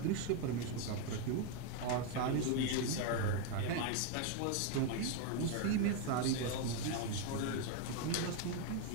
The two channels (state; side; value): different; both; correlation 0.01